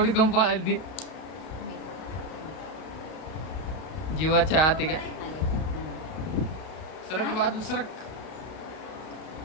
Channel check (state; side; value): late; right; 32 ms